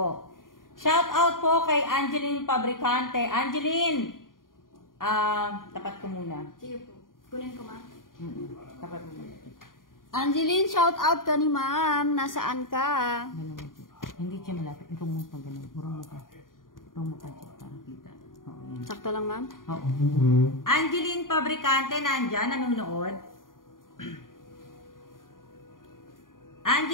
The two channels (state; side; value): late; right; 0.90 ms